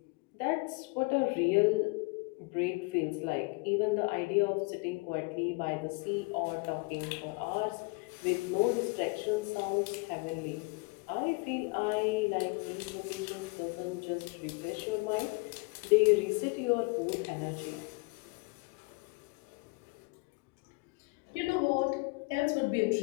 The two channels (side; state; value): right; quieter; 28.9 dB